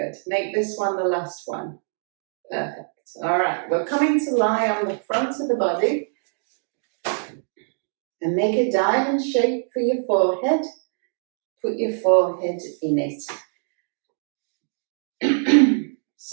Make this one the last one. Perfect. All right, we're coming to lie on the front of the body and make a diamond shape for your forehead. Put your forehead in it.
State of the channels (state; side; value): silent; left; digital silence